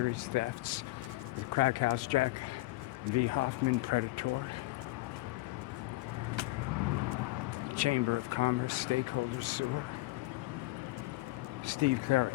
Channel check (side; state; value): right; quieter; 19.8 dB